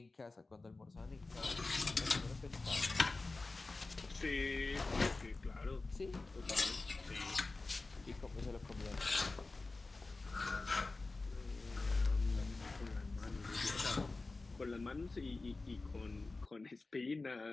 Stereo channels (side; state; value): right; quieter; 3.5 dB